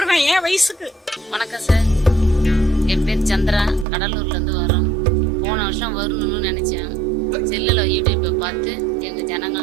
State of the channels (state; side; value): drops out; left; at 3.9 s